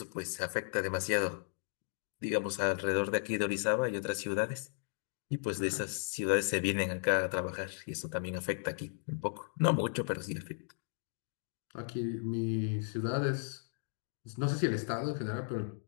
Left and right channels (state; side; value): silent; right; digital silence